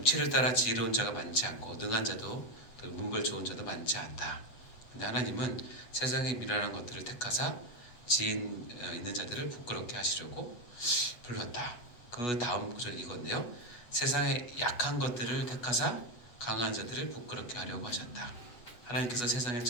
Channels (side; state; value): right; late; 8.2 ms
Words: 따라 지혜로운 자가 많지 않고 능한 자도 문벌 좋은 자도 많지 않다. 근데 하나님은 세상의 미련한 것들을 택하사 지혜 있는 자들을 부끄럽게 하시려고 불렀다. 그 다음 구절 이건데요. 세상의 약한 것들을 택하사 강한 자들을 부끄럽게 하려고 하셨다. 하나님께서 세상의